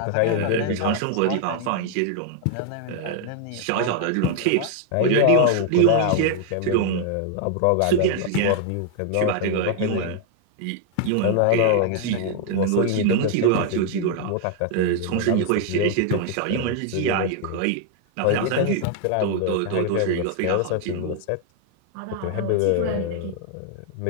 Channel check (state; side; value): different; both; correlation 0.00